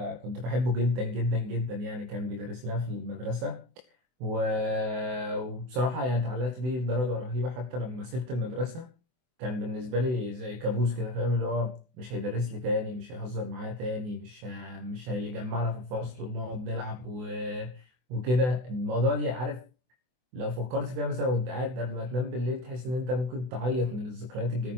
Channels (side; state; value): left; late; 24 ms